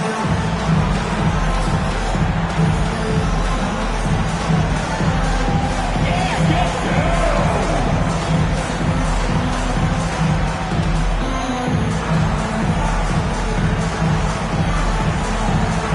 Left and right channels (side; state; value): both; identical; correlation 1.00